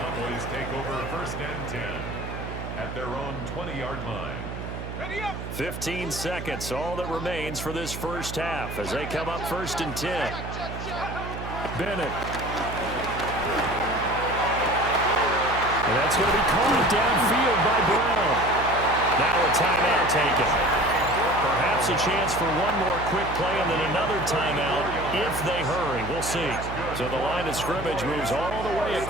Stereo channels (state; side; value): noise; right; hum, 8 dB below the sound